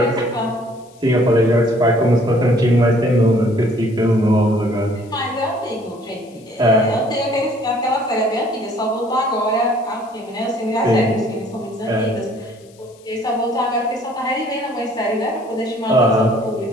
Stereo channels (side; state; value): left; noise; hiss, 29 dB below the sound